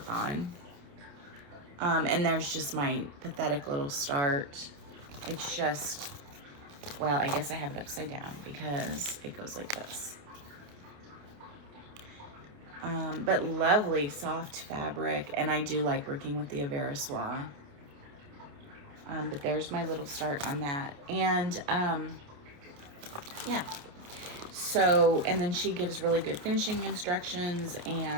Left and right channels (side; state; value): left; late; 28 ms